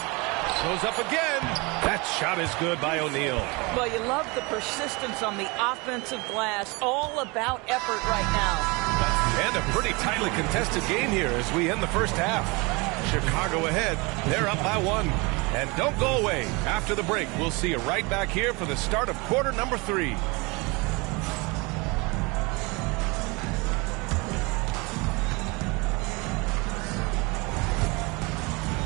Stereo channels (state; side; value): quieter; left; 26.9 dB